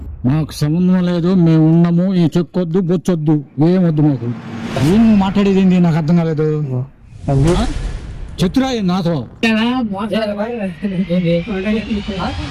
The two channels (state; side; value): identical; both; correlation 1.00